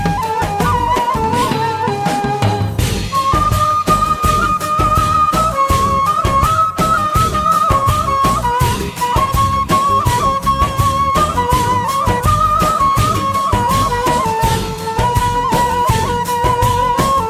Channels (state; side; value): identical; both; correlation 1.00